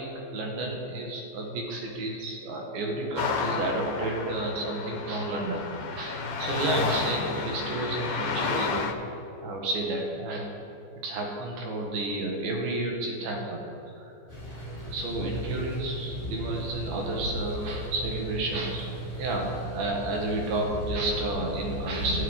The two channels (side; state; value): left; late; 14 ms